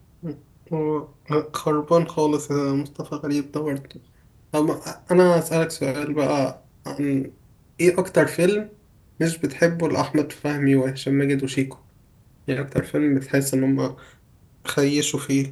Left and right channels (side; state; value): both; identical; correlation 1.00